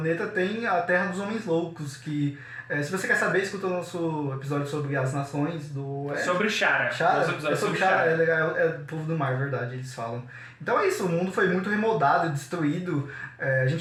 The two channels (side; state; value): both; identical; correlation 1.00